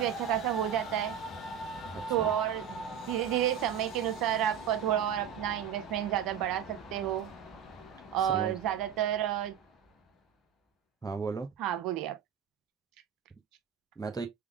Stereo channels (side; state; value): left; quieter; 9.0 dB